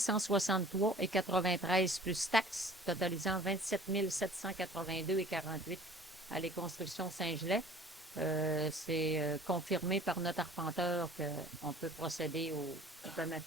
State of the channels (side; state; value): both; normal; correlation 0.48